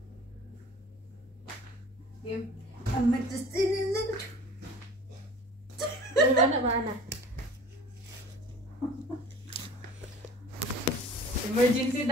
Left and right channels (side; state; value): both; normal; correlation 0.43